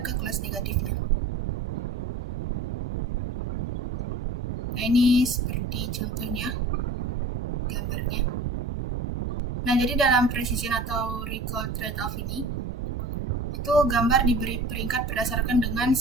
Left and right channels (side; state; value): left; quieter; 3.0 dB